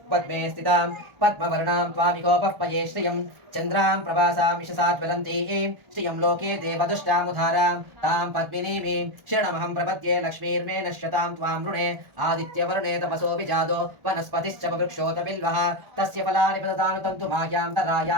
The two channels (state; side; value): late; left; 1.4 ms